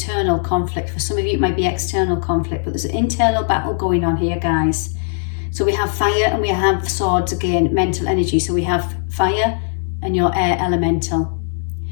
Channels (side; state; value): right; silent; digital silence